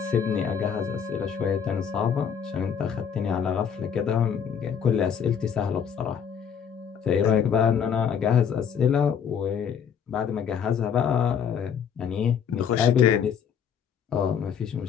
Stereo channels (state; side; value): quieter; right; 7.5 dB